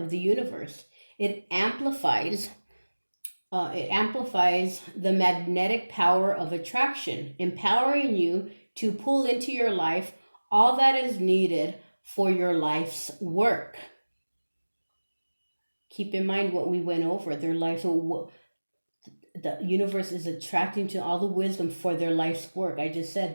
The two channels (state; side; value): inverted; both; correlation -1.00